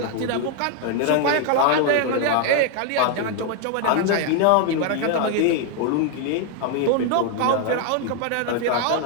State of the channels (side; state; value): both; different; correlation 0.01